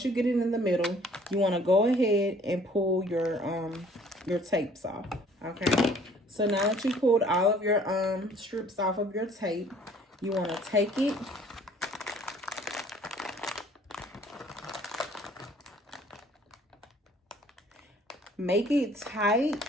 you get it in the middle, you want to go ahead and pull your tapes off. Okay. So now that you pulled all of your strips off of your tape, you want to take it. Make it tight,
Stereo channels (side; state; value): both; normal; correlation 0.56